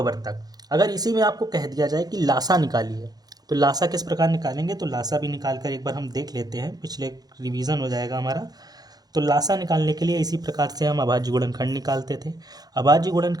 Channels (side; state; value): left; late; 0.19 ms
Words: अगर इसी में आपको कह दिया जाए कि लासा निकालिए, तो लासा किस प्रकार निकालेंगे, तो लासा भी निकाल कर एक बार हम देख लेते हैं, पिछले रिवीजन हो जाएगा हमारा। तो लासा निकालने के लिए इसी प्रकार से हम अभाज्य गुणनखंड निकालते थे। अभाज्य